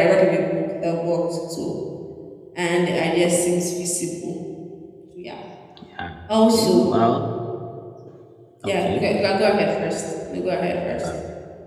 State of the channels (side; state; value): both; identical; correlation 1.00